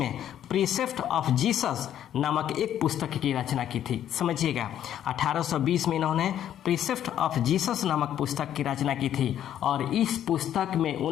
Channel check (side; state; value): right; quieter; 10.8 dB